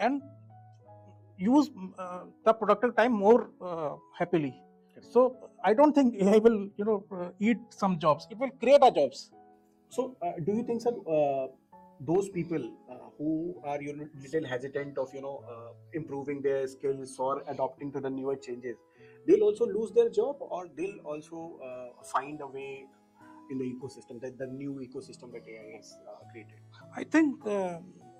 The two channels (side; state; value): both; identical; correlation 1.00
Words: use the productive time more happily. So I don't think AI will eat some jobs. It will create a jobs. So, do you think, sir, those people who are little hesitant of improving their skills or adopting to the newer changes, they'll also lose their job, or they'll also find a way in the ecosystem, that the new ecosystem that AI has created? I think